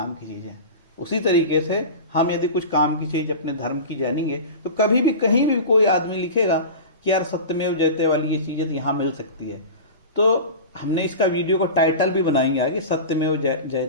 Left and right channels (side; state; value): both; inverted; correlation -0.31